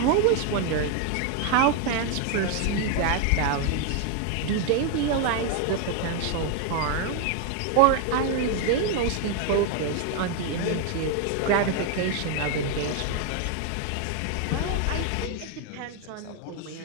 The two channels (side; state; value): both; different; correlation 0.01